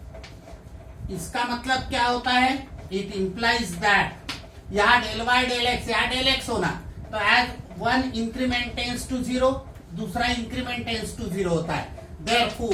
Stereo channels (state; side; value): identical; both; correlation 1.00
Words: इसका मतलब क्या होता है, इट इंप्लाइज दैट यहां del y del x, यहां del x होना, तो as one increment tends to 0 दूसरा इंक्रीमेंट टेंस टू 0 होता है. Therefore